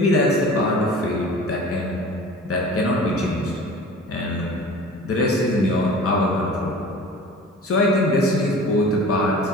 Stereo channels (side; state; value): both; normal; correlation 0.41